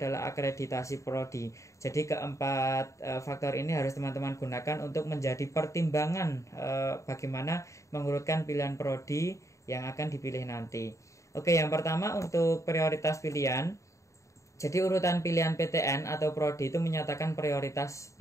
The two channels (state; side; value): late; right; 0.15 ms